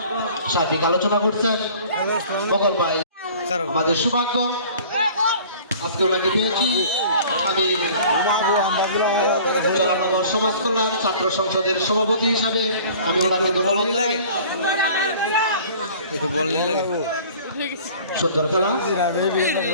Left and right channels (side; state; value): both; inverted; correlation -0.47